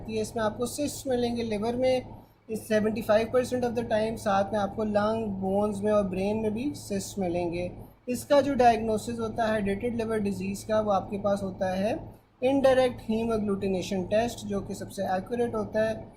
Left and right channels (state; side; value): identical; both; correlation 1.00